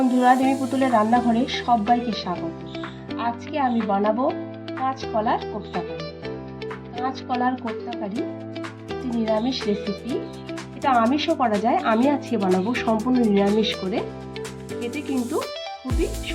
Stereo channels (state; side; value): identical; both; correlation 1.00